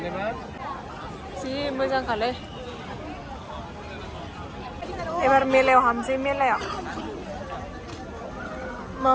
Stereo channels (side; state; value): both; identical; correlation 1.00